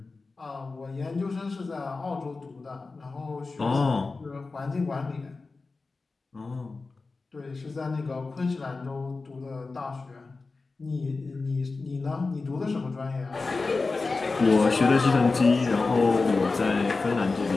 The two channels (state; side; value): quieter; right; 3.9 dB